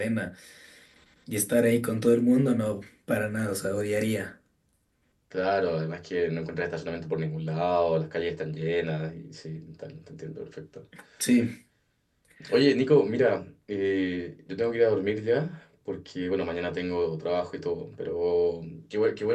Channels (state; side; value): identical; both; correlation 1.00